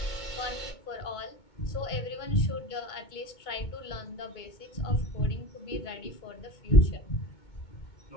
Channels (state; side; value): late; right; 2.2 ms